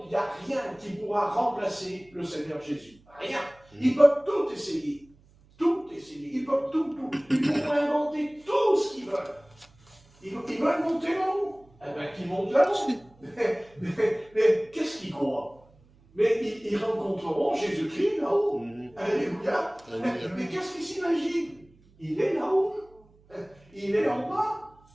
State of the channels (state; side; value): noise; right; hum, 29 dB below the sound